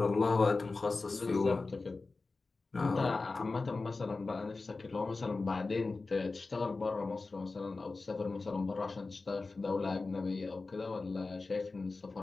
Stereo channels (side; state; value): right; quieter; 3.7 dB